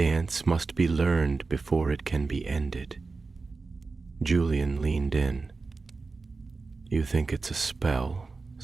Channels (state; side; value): quieter; left; 4.0 dB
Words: must be learned before it can be ended. Julian leaned in. You think it's a spell,